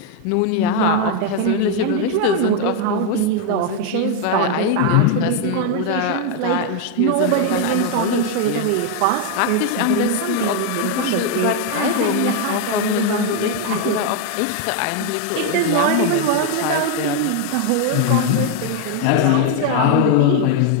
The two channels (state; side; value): different; both; correlation 0.01